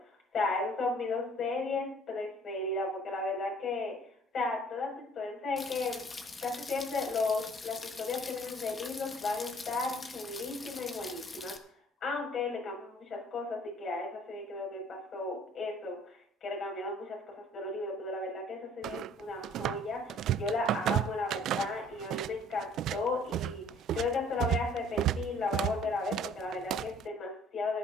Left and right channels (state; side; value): normal; both; correlation 0.55